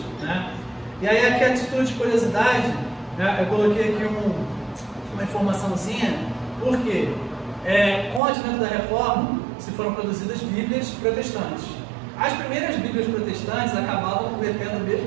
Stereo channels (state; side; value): drops out; left; at 8.2 s